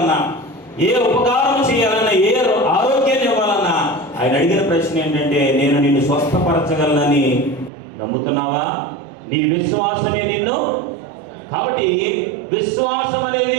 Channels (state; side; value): drops out; left; at 7.7 s